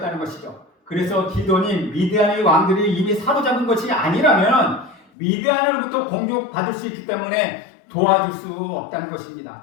것이죠. 그래서 기드온이 미디안의 왕들이 이미 사로잡은 것이 아니라면 미디안으로부터 공격받을 수 있기 때문에 도와줄 수 없다는 것입니다.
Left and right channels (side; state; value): right; drops out; at 5.1 s